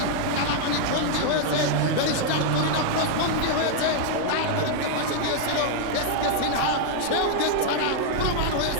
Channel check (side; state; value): both; different; correlation 0.00